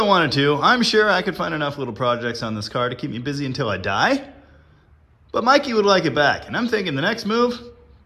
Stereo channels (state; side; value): identical; both; correlation 1.00